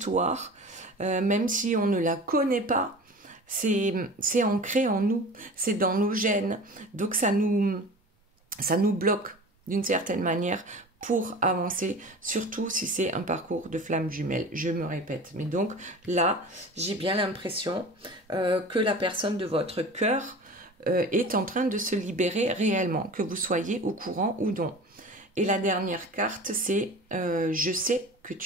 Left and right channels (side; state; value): both; normal; correlation 0.37